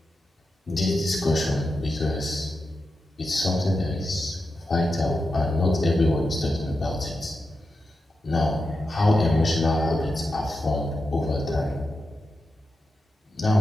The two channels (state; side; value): normal; both; correlation 0.89